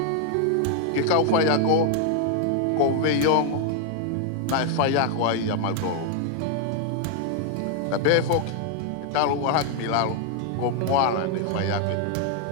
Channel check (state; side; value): different; both; correlation 0.00